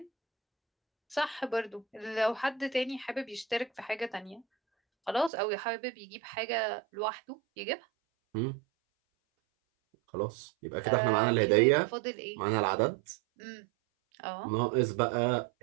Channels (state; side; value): drops out; left; at 5.3 s